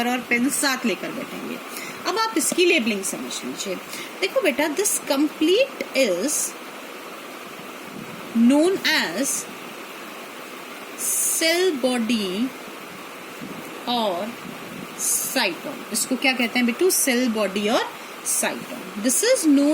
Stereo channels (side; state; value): both; identical; correlation 1.00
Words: और पेन साथ लेकर बैठेंगे. अब आप इसकी लेबलिंग समझ लीजिए. देखो बेटा, this complete is known as cell body और साइटोन. इसको क्या कहते हैं बेटू? सेल बॉडी और cyton. This is